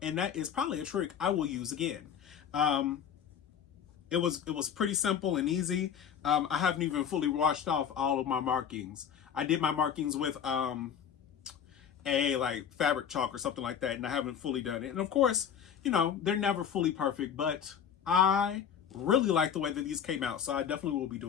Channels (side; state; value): right; quieter; 8.2 dB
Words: and that is probably a trick I will use again. It was pretty simple and easy. I haven't even fully washed off all of my markings. I did my markings with a fabric chalk or something like that, and I haven't fully done it. And of course, you know, they're never fully perfect, but I really like the way that these came out, so I definitely will be